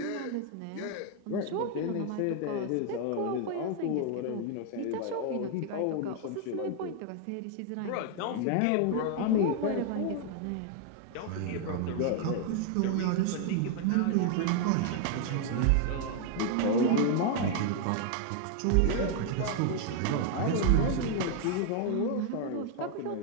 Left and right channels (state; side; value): different; both; correlation 0.00